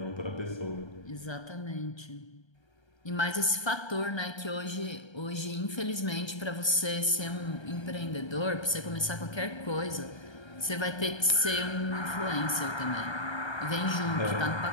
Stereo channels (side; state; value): right; late; 1.3 ms